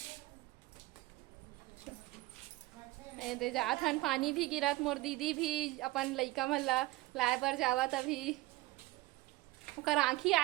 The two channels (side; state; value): left; quieter; 19.8 dB